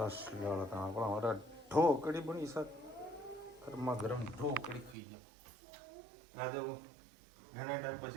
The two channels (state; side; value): drops out; left; at 5.0 s